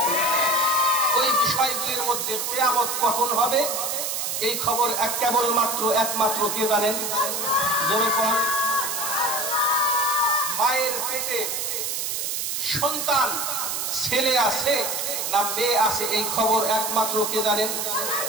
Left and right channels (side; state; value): right; noise; hiss, 2 dB below the sound